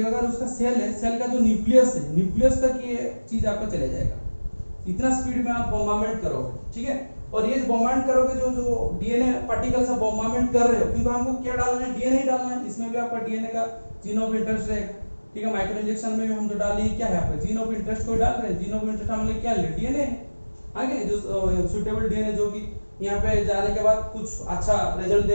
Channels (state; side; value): inverted; both; correlation -1.00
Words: अगर उसका सेल है, सेल का जो न्यूक्लियस है, न्यूक्लियस तक ये चीज आपका चले जाएगा, इतना स्पीड में आप बोम्बार्डमेंट करोगे, ठीक है। और ये बोम्बार्ड करोगे जो डीएनए पार्टिकल से बोम्बार्डमेंट कर रहे हो, क्योंकि हमको क्या डालना है, डीएनए ही डालना है। इसमें भी आपका डीएनए का जीन ऑफ इंटरेस्ट रहेगा, ठीक है। माइक्रो इंजेक्शन में भी हम जो डाल रहे क्या है आपका जीन ऑफ इंटरेस्ट को डाल रहे हैं। जीन ऑफ इंटरेस्ट हमने क्या ले डीएनए है आगे जो सुटेबल डीएनए जो कि यहाँ पे जाने के बाद कुछ अच्छा रिजल्ट